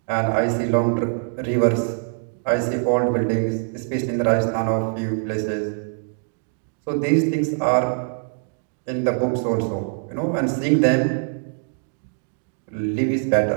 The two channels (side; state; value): left; silent; digital silence